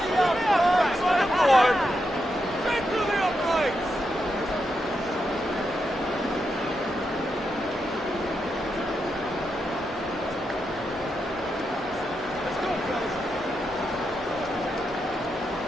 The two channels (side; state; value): both; normal; correlation 0.84